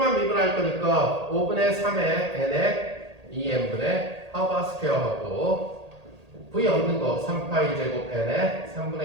미분할 거니까 5분의 3의 n에 2n분의 하바 스퀘어하고 V 얻는 거 3파이 제곱 n에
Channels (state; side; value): late; left; 1.8 ms